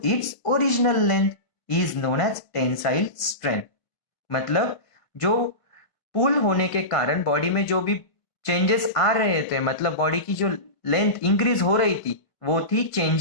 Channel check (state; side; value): late; right; 1.4 ms